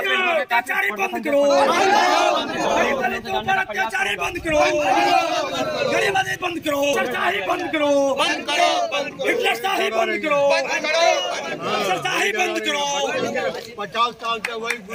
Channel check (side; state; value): both; identical; correlation 1.00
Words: अत्याचारी बंद करो, अत्याचारी बंद करो, गरीबी बंद करो, सरशाही बंद करो, हिटलरशाही बंद करो, सरशाही बंद करो। 50 साल से वही